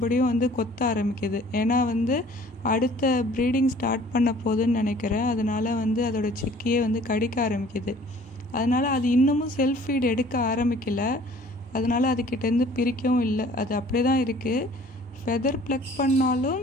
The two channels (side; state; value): both; normal; correlation 0.52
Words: கொத்த ஆரம்பிக்குது. ஏன்னா அடுத்த ப்ரீடிங் ஸ்டார்ட் பண்ண போகுதுன்னு நினைக்கிறேன். அதனால் அதோட சிக்கையே கடிக்க ஆரம்பிக்குது. அதனால் அது இன்னமும் செல்ஃப் ஃபீட் எடுக்க ஆரம்பிக்கலை. அதனால் அதுக்கிட்டேருந்து பிரிக்கவும் இல்லை, அது அப்படியே தான் இருக்குது. ஃபெதர் ப்ளக் பண்ணாலும்